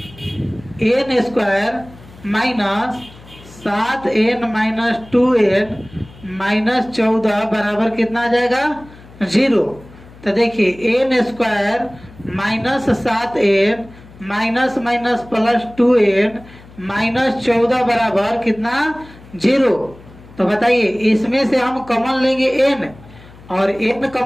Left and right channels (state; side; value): noise; left; hum, 22 dB below the sound